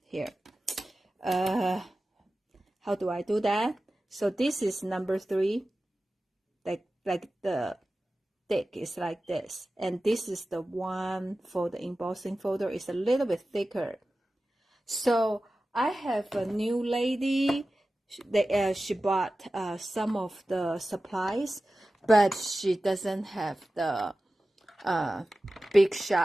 here. How do I do that? So this is number 3, like the thick is like this, and this is the one for the embossing folder, is a little bit thicker. So I have a new lady she bought some of the supplies, but she doesn't have the big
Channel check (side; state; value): both; normal; correlation 0.95